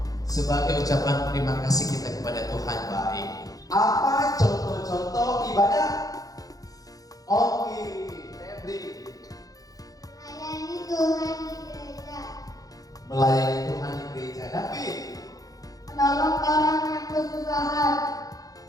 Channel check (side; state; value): right; late; 0.17 ms